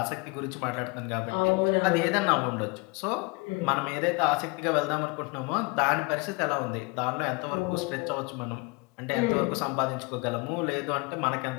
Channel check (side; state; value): right; quieter; 27.5 dB